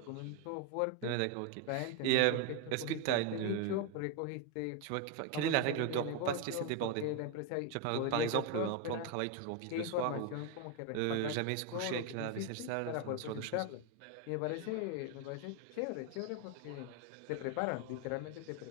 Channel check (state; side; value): different; both; correlation 0.01